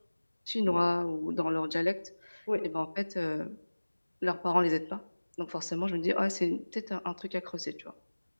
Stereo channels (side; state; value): both; inverted; correlation -1.00